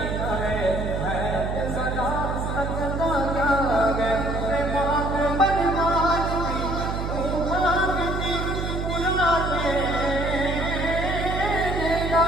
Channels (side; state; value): right; noise; hum, 3 dB below the sound